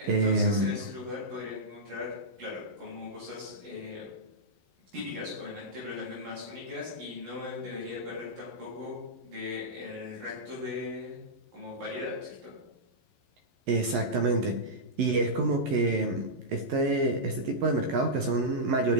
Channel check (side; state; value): left; late; 11 ms